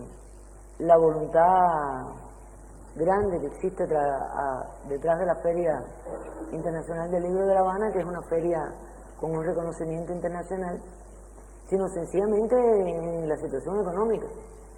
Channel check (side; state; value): both; identical; correlation 1.00